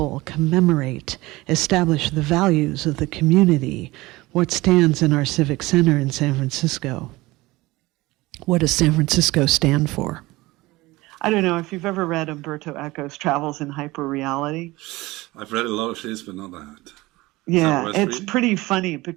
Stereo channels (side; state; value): left; quieter; 20.3 dB